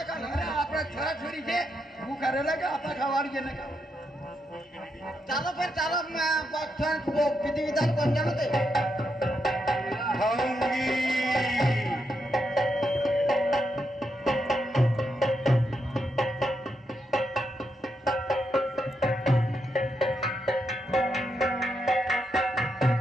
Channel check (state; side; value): normal; both; correlation 0.82